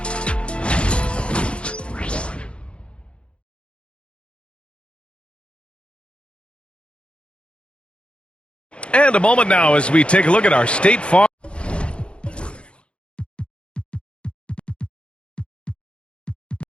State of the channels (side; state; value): right; late; 0.057 ms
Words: And a moment now as we take a look at our State Farm.